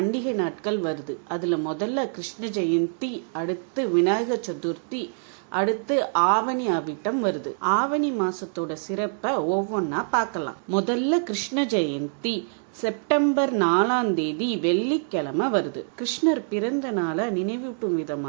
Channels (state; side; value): silent; left; 61 dB below the other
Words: நாட்கள் வருது. அதுல முதல்ல கிருஷ்ண ஜெயந்தி, அடுத்து விநாயகர் சதுர்த்தி, அடுத்து ஆவணி அவிட்டம் வருது. ஆவணி மாசத்தோட சிறப்பை ஒவ்வொன்னா பார்க்கலாம். முதல்ல கிருஷ்ண ஜெயந்தி செப்டம்பர் 4 வெள்ளிக்கிழமை வருது. கிருஷ்ணர் பிறந்த நாளை நினைவூட்டும்